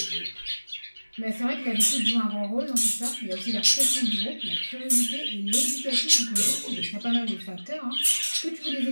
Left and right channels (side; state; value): both; inverted; correlation -1.00